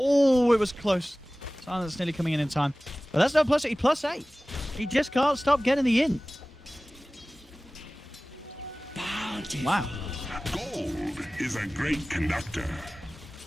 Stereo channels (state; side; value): normal; both; correlation 0.98